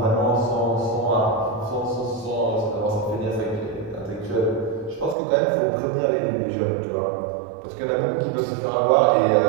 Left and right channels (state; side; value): drops out; left; at 5.2 s